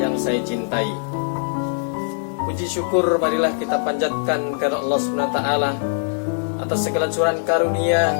saya cintai. Puji syukur marilah kita panjatkan kepada Allah SWT atas segala curahan karunia,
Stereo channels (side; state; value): right; silent; 64 dB below the other